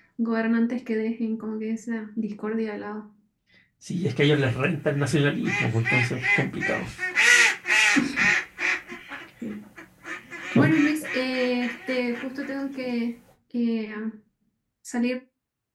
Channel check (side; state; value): both; identical; correlation 1.00